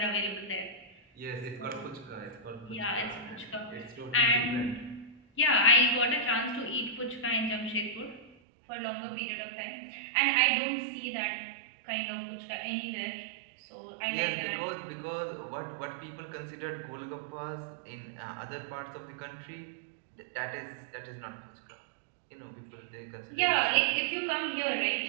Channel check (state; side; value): drops out; left; at 8.3 s